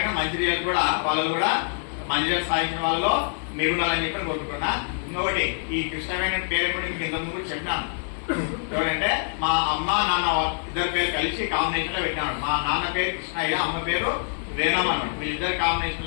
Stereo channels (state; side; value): silent; right; 56 dB below the other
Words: మంచి రిజల్ట్ కూడా వాళ్ళు కూడా మంచి రిజల్ట్ సాధించిన వాళ్ళలో మీరు ఉండాలని చెప్పి కోరుకుంటున్నా. ఇంకొకటి, ఈ కృష్ణవేణి పేరు కూడా మీకు ఇంతకుముందు కూడా చెప్పినాను. ఎవరంటే మా అమ్మ నాన్న ఇద్దరు పేరు కలిసి కాంబినేషన్ లో పెట్టినాడు. మా నాన్న పేరు కృష్ణయ్య, అమ్మ పేరు వేణమ్మ అన్నాడు. వీళ్ళిద్దరు